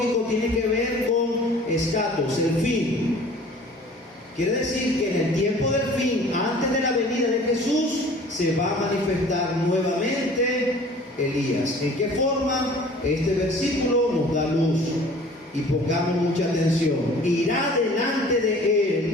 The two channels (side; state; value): both; normal; correlation 0.48